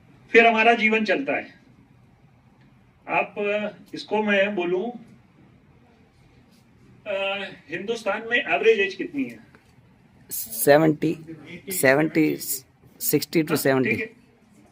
फिर हमारा जीवन चलता है। आप इसको मैं बोलूं, हिंदुस्तान में एवरेज एज कितनी है? 70, 60 to 70. ठीक है,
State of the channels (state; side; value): identical; both; correlation 1.00